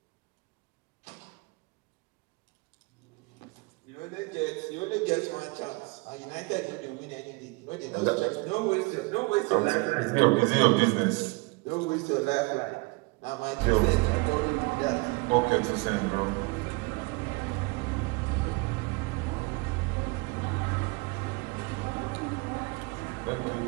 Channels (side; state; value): left; quieter; 27.2 dB